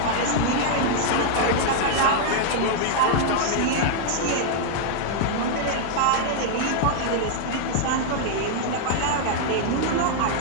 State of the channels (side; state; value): both; different; correlation -0.01